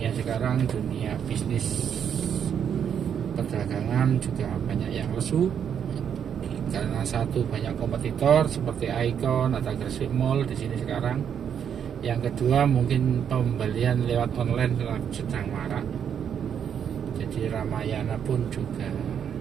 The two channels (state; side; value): quieter; left; 8.2 dB